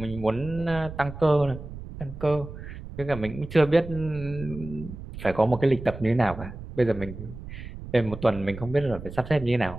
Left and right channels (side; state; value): right; noise; rumble, 12 dB below the sound